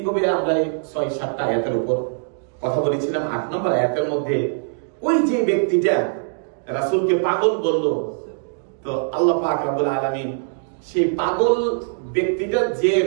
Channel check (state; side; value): silent; left; digital silence